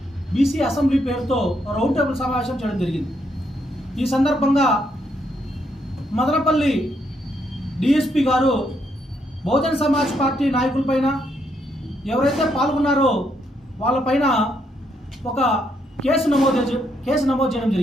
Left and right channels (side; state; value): both; normal; correlation 0.75